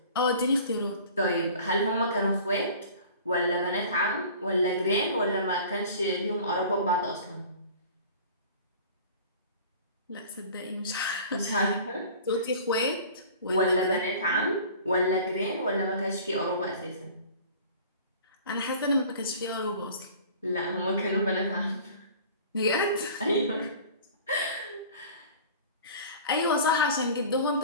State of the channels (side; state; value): both; inverted; correlation -0.44